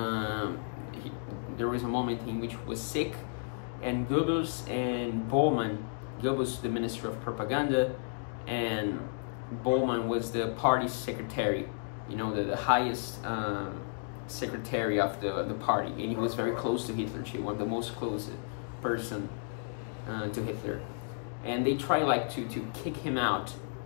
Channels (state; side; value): silent; right; digital silence